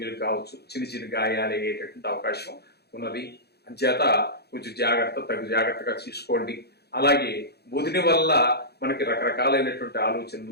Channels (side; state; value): right; late; 0.47 ms